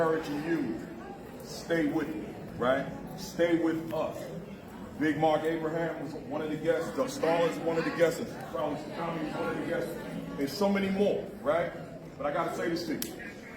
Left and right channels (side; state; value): both; identical; correlation 1.00